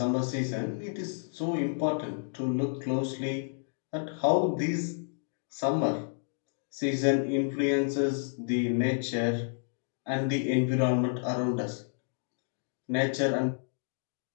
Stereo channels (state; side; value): silent; right; digital silence